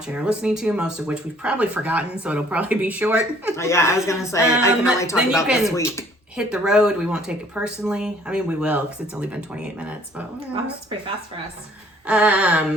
or listening to, most of which we've probably forgotten, so it'll probably be short. Oh, yeah, I was gonna say I can only talk then you about this can week. Hit the road. We won't take it personally. I mean, we will because it's only been 28 minutes, but Wow, that's pretty fast for us.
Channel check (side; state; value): both; normal; correlation 0.58